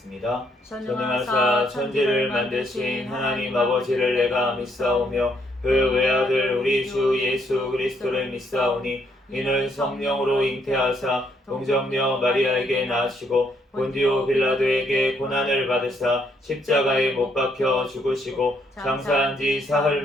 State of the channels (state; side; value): normal; both; correlation 0.72